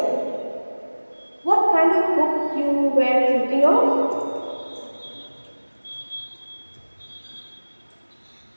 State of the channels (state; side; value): inverted; both; correlation -1.00